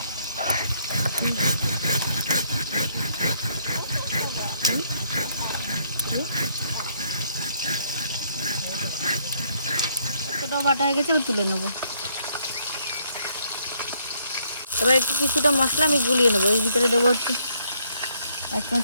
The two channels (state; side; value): inverted; both; correlation -0.70